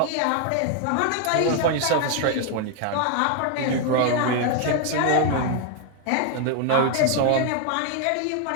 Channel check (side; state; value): both; different; correlation 0.00